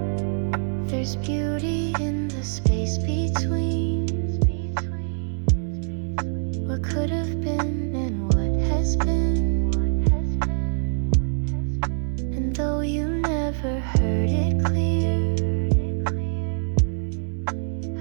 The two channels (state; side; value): silent; left; digital silence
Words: There's beauty in the space between what could have been and what has been. And though you never heard it clear,